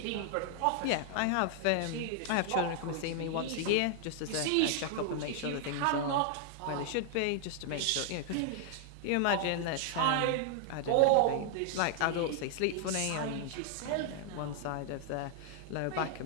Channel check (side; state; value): both; different; correlation 0.00